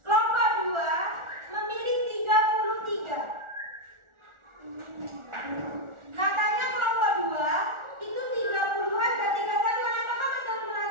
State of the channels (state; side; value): late; left; 1.4 ms